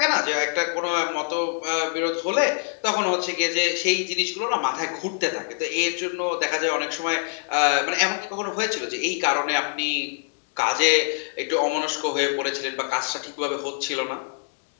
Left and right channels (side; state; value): right; silent; 55 dB below the other